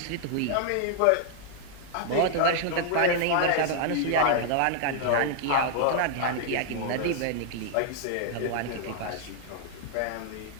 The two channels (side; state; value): both; different; correlation 0.00